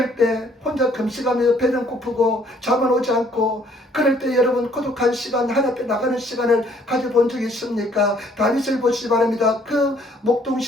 때 혼자 금식하면서 배는 고프고 잠은 오지 않고 그럴 때 여러분 고독한 시간 하나님 앞에 나가는 시간을 가져본 적이 있습니까? 다윗을 보시기 바랍니다. 그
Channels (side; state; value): both; normal; correlation 0.62